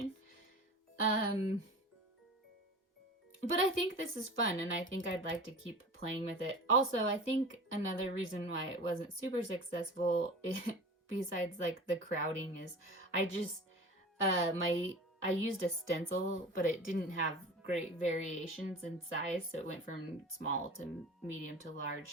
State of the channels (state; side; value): normal; both; correlation 0.36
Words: Um but I think this is fun and I think I'd like to keep playing with it. Also, I think another reason why it wasn't super successful besides like the crowding is I just my I used a stencil, but it didn't have great variations in size, so it went from small to medium to